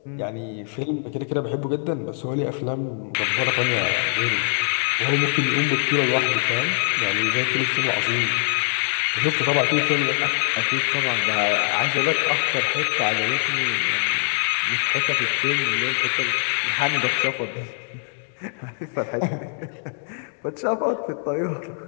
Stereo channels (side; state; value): right; silent; 63 dB below the other